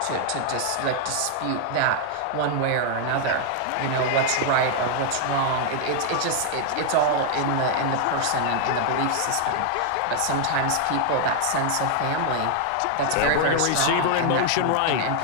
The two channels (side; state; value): both; different; correlation 0.00